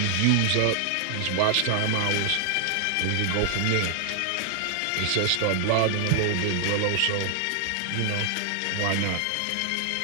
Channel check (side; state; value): both; different; correlation 0.00